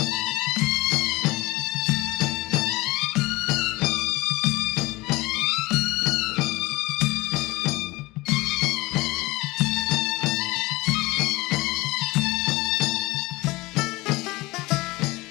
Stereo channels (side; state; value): right; quieter; 21.5 dB